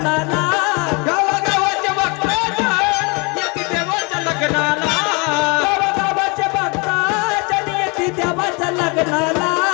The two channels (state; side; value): quieter; right; 30.5 dB